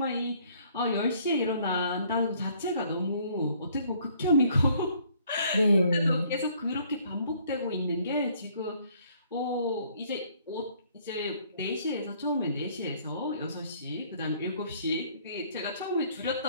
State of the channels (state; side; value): inverted; both; correlation -0.62